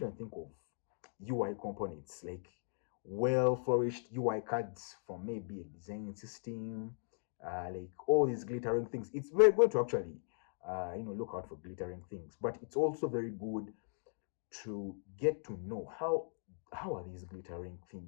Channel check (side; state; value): right; silent; digital silence